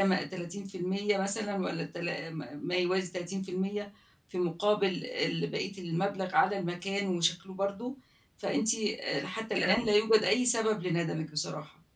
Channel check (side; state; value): both; identical; correlation 1.00